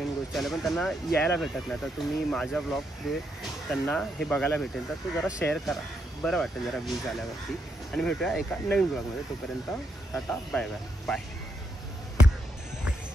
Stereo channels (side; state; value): both; normal; correlation 0.79